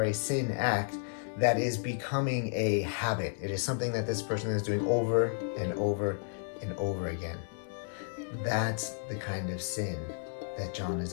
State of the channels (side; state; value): right; silent; digital silence